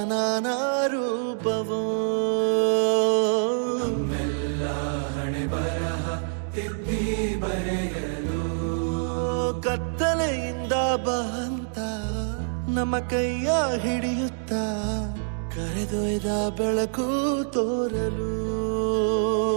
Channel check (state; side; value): silent; left; digital silence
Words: ನಾನಾ ರೂಪವೋ ನಮ್ಮೆಲ್ಲ ಹಣೆ ಬರಹ ತಿದ್ದಿ ಬರೆಯಲು ಕತ್ತಲೆಯಿಂದ ಬಂತ ನಮ್ಮ ಕೈಯ ಹಿಡಿಯುತ್ತ ಕರೆದೊಯ್ದ ಬೆಳಕು ತೋರಲು